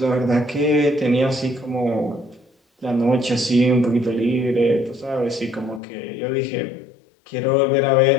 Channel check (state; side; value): drops out; right; at 5.8 s